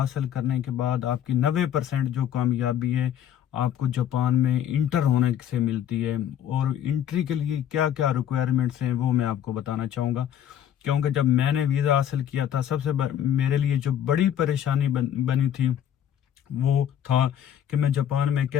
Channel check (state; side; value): quieter; right; 10.0 dB